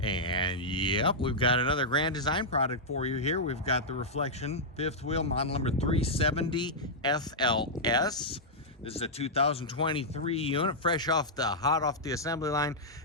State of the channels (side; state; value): both; normal; correlation -0.08